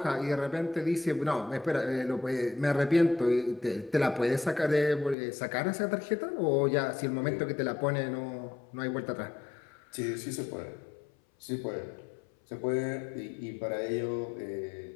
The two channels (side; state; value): right; drops out; at 5.2 s